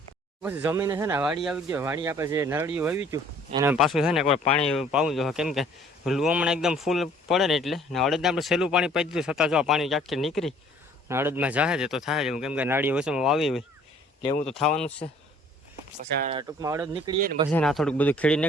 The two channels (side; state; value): both; normal; correlation 0.56